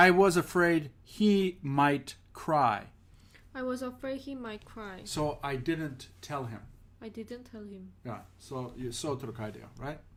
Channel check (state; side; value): identical; both; correlation 1.00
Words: was afraid he might cry, I was afraid he might cry. so I didn't tell him. I didn't tell him. Yeah, so 들어가야 돼요, right?